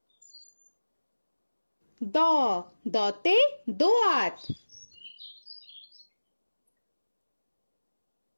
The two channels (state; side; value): inverted; both; correlation -1.00